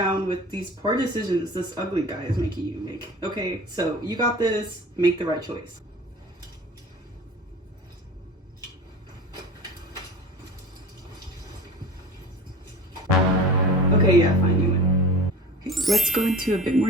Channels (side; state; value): both; normal; correlation 0.36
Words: with these poor decisions this ugly guy is making you make, okay? So, you got this. Make the right choice. Okay, yeah, fine, you win. Okay, let's go into a bit more